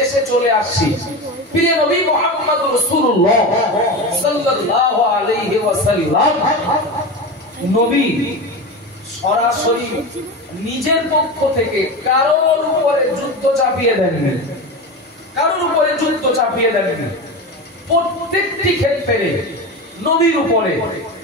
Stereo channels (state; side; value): normal; both; correlation 0.24